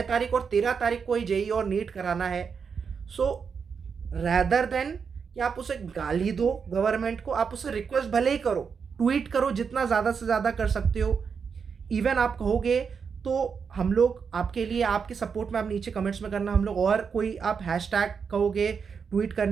तारीख और 13 तारीख को ही जेई और नीट कराना है, सो रैदर देन कि आप उसे गाली दो गवर्नमेंट को, आप उसे रिक्वेस्ट भले ही करो, ट्वीट करो जितना ज़्यादा से ज़्यादा कर सकते हो। इवन आप कहोगे तो हम लोग आपके लिए, आपके सपोर्ट में आप नीचे कमेंट्स में करना, हम लोग और कोई आप हैशटैग कहोगे, ट्वीट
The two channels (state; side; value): quieter; left; 6.1 dB